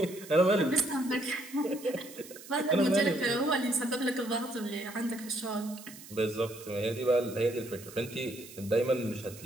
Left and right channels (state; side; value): noise; right; hiss, 17 dB below the sound